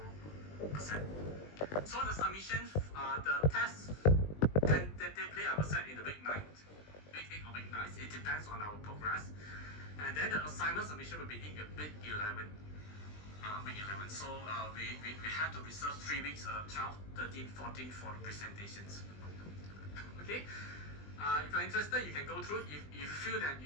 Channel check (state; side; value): late; right; 20 ms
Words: So the submissions, the test tentatively I will set in the week 8 or week 9. It depends on our progress. And then the assignment submission will be in week 11. So we have to reserve 3 weeks, 12, 13, 14 for the presentations. Okay. If you're interested, you can go through. If you feel that